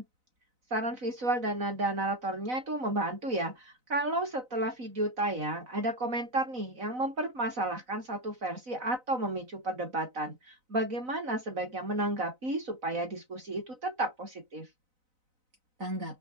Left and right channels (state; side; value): late; left; 4.0 ms